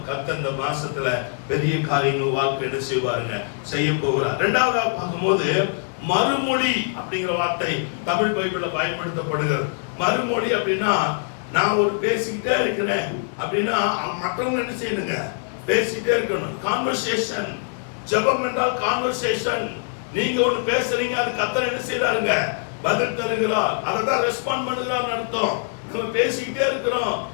கர்த்தர் இந்த மாசத்துல பெரிய காரியங்கள் வாழ்க்கை என்ன செய்வாருங்க? செய்ய போகிறார். இரண்டாவதா பார்க்கும்போது மறுமொழி அப்படிங்கிற வார்த்தை தமிழ் பைபிள்ல பயன்படுத்தப்படுகிறது. மறுமொழி அப்படின்னா, நான் ஒரு பேசிக்கிட்டே இருக்கிறேன் அப்படின்னா மற்றவங்க என்ன செய்யணுங்க? பேசிக்கிட்டே இருக்கணும். கான்வர்சேஷன். ஜெபம் என்றால் கான்வர்சேஷன். நீங்க ஒண்ணு பேசுறீங்க, அது கர்த்தர் என்ன செய்யறாருங்க? பதில் தருகிறார். அததான் ரெஸ்பாண்ட் பண்ணுகிறார் அர்த்தம். நம்ம பேசிக்கிட்டே இருக்கிறோம்,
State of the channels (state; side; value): silent; right; 63 dB below the other